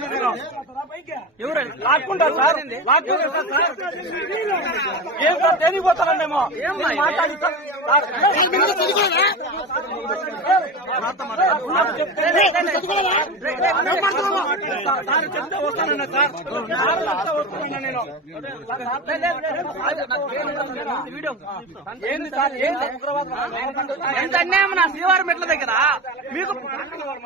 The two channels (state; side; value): normal; both; correlation 0.24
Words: ఎవరు లాక్కుంటారు సార్. లాక్కుంటారు సార్. ఏం సార్ తెలియపోతారండేమో మాట్లాడి చెప్తే వస్తానన్నా సార్. వస్తానన్నా నేను ఏంది సార్. ఏంది ఎంత అన్యాయం నా శ్రీవారి మెట్ల దగ్గర.